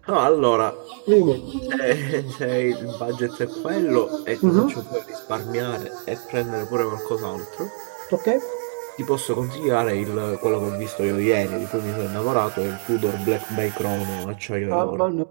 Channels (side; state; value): left; silent; digital silence